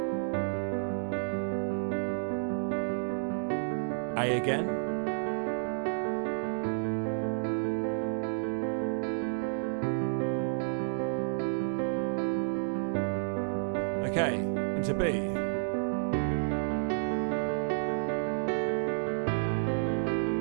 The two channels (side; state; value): left; silent; digital silence